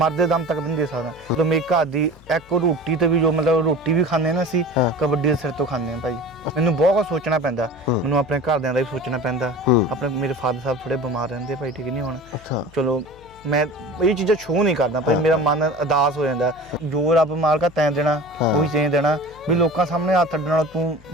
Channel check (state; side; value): noise; left; hum, 24 dB below the sound